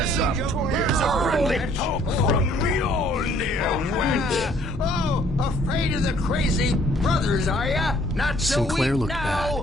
Here's a friendly poke from Mjolnir, wench. Oh, afraid of the crazy brothers, are ya? Not so Sinclair weak looked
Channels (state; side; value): normal; both; correlation 0.60